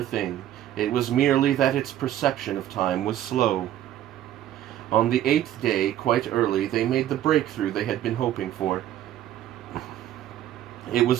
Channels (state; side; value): quieter; left; 12.2 dB